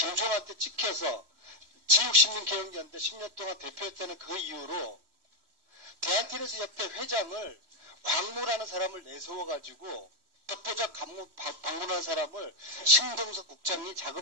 찍혀서 지육신민개혁연대 10년 동안 대표했다는 그 이유로 대한테니스협회 회장을 광무라는 사람을 내세워가지고 덕보자 방문한 사람을 신동석 국장이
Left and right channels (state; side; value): late; left; 3.1 ms